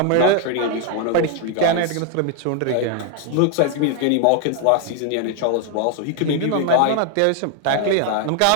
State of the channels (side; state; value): both; different; correlation 0.01